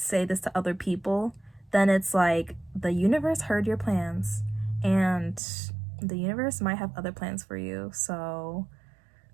this to other people, then it's like the universe heard your plans and the universe might have other plans for you. So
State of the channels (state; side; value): drops out; left; at 5.4 s